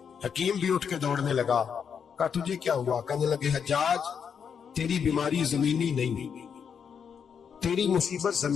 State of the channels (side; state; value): right; quieter; 7.1 dB